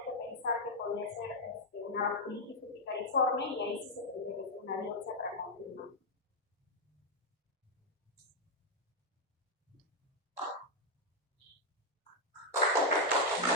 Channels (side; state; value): both; normal; correlation -0.01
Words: que pensar que podría ser una vasculitis urticariforme, y ahí sí se tendría que hacer una biopsia para confirmar.